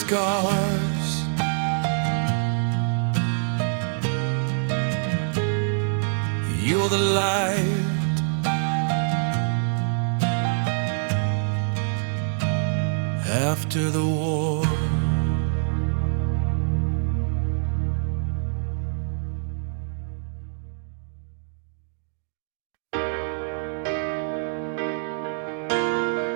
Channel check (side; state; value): left; silent; digital silence